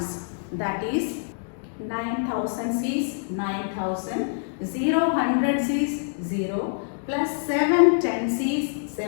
That is 9 thousands is 9000, 0 hundreds is 0, plus 7 tens is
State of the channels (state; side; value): silent; right; digital silence